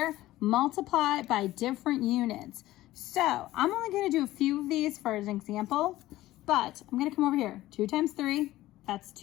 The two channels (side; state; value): right; quieter; 16.1 dB